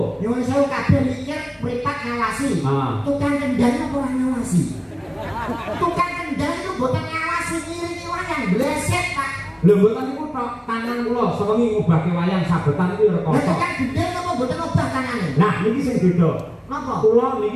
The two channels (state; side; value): identical; both; correlation 1.00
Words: Nyuwun sewu kabeh mikir mripat ngawasi. Tukang kendang apa ora ngawasi? Tukang kendang itu boten ngawasi ngiringi wayang bleset Pak. Lho mboten niku tok tangan kula sewengi ngobahke wayang sabetan iki rekoso. Lah tukang gendeng apa boten ngobah tangane? Nah niki sing beda. Napa? Kula